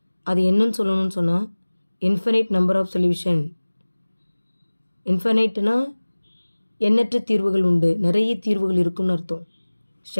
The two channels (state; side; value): inverted; both; correlation -1.00